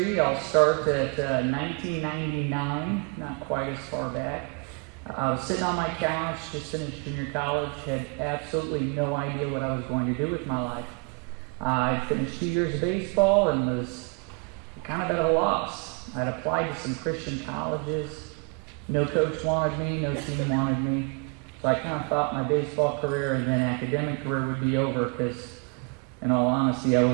I'll start at 1999, not quite as far back. I was sitting on my couch, just finished junior college, had absolutely no idea what I was going to do with my life. I finished 2 years of baseball and was kind of at a loss. I'd applied to some Christian colleges. No coach wanted me, no team wanted me. So I kind of thought my baseball career and then academic career would be over because, in all honesty, I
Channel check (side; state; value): left; quieter; 34.8 dB